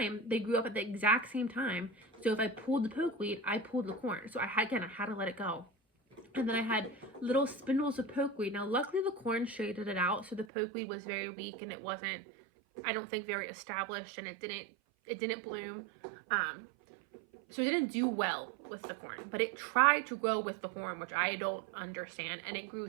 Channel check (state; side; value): drops out; left; at 10.5 s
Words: they grew up at the exact same time. So if I pulled the pokeweed, I pulled the corn. So I had to let it go. And then I had little spindles of pokeweed. Now, luckily the corn shaded it out, so the pokeweed was very weak and it wasn't, I don't think, very established, and it didn't bloom. So it didn't do well with the corn, but it tried to grow with the corn, which I don't understand, and it